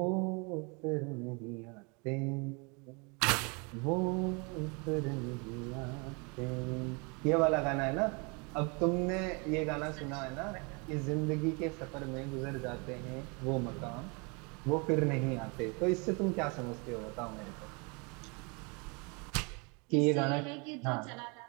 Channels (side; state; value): left; quieter; 31.4 dB